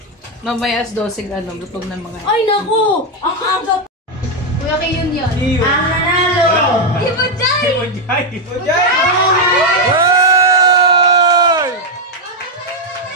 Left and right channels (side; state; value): both; normal; correlation 0.01